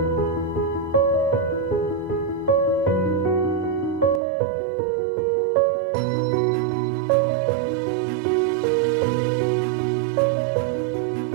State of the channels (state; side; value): drops out; left; at 4.2 s